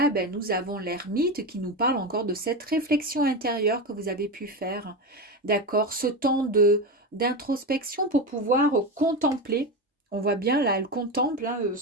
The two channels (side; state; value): both; normal; correlation 0.18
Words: ben, nous avons l'ermite qui nous parle encore de cette réflexion intérieure que vous avez pu faire. D'accord, ce temps d'introspection pour pouvoir contempler. On voit bien là, elle contemple hein,